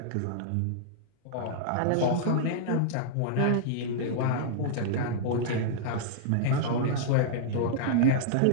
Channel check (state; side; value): different; both; correlation -0.02